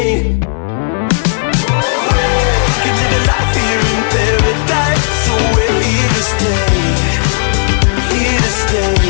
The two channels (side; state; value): right; silent; digital silence